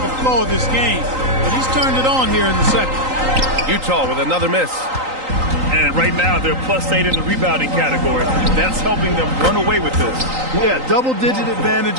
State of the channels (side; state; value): left; late; 3.9 ms